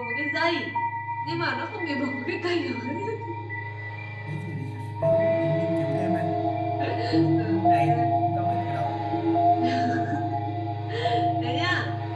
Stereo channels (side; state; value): both; identical; correlation 1.00